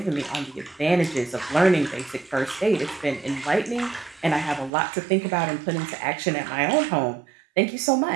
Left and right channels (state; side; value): drops out; left; at 4.7 s